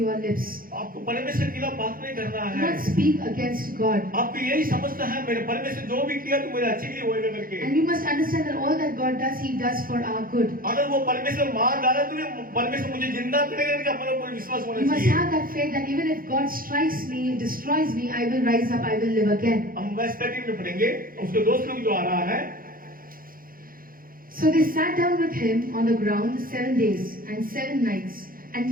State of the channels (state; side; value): late; left; 0.42 ms